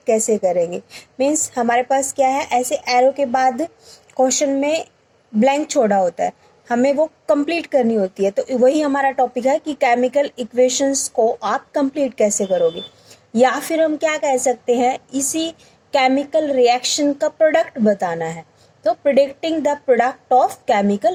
कैसे करेंगे। मीन्स हमारे पास क्या है, ऐसे एरो के बाद क्वेश्चन में ब्लैंक छोड़ा होता है, हमें वो कंप्लीट करनी होती है। तो वही हमारा टॉपिक है कि केमिकल इक्वेशंस को आप कंप्लीट कैसे करोगे, या फिर हम क्या कह सकते हैं, इसी केमिकल रिएक्शन का प्रोडक्ट बताना है। तो predicting the product of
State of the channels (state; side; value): identical; both; correlation 1.00